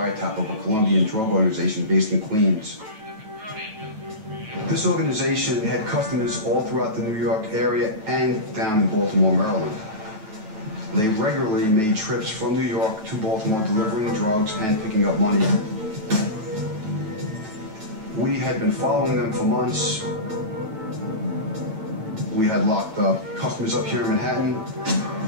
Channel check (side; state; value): left; late; 9.2 ms